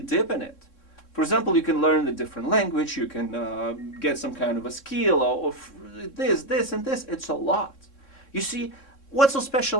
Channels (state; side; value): late; right; 3.6 ms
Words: deep in it. For example, you can learn a different language, you can get some kind of a skill or this, and this. It's a lot. You see, what's so